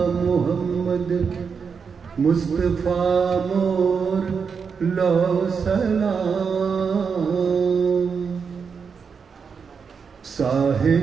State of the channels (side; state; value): left; quieter; 5.9 dB